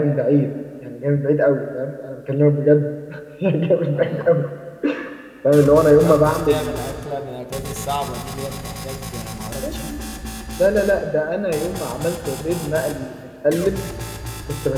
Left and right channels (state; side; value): identical; both; correlation 1.00